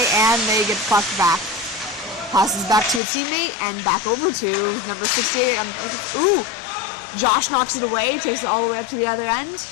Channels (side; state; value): right; drops out; at 3.0 s